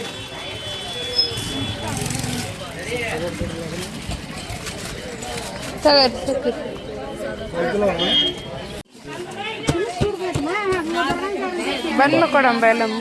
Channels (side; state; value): both; identical; correlation 1.00